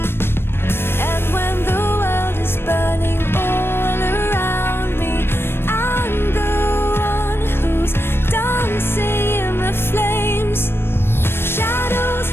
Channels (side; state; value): right; late; 0.11 ms